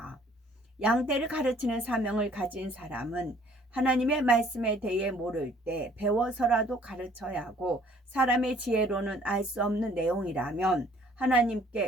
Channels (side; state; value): both; normal; correlation 0.58